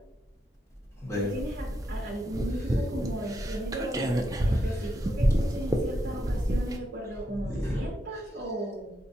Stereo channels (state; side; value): normal; both; correlation 0.82